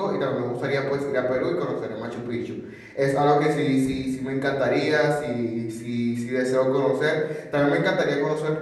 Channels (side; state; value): both; identical; correlation 1.00